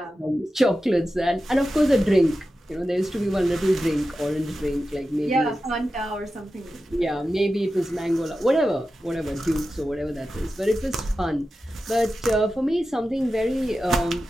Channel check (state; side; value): normal; both; correlation 0.92